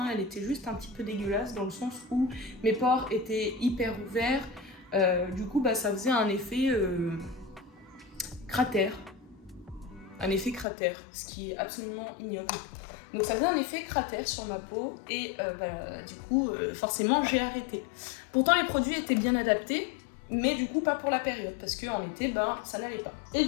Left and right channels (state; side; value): drops out; right; at 10.7 s